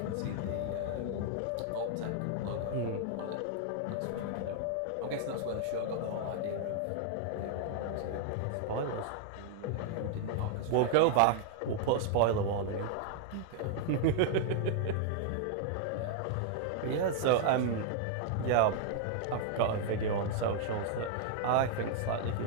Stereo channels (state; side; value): different; both; correlation 0.00